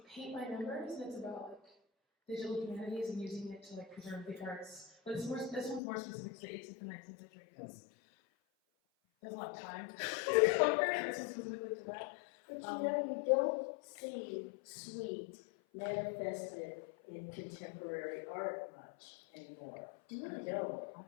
Paint by Numbers, and it's about like digital humanities and using it to like preserve the arts. But this one's more specific to the 18th and 19th century because there's a lot of time to cover, and this is specifically to that. But you don't see sweet manifested in contemporary art much anymore. I don't.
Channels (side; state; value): right; drops out; at 5.8 s